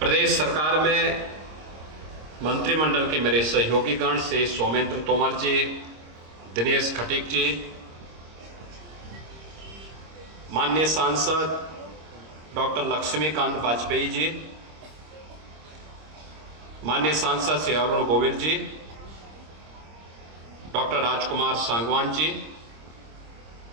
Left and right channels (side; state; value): left; late; 26 ms